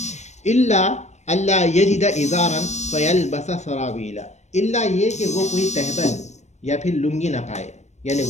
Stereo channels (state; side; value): late; right; 0.33 ms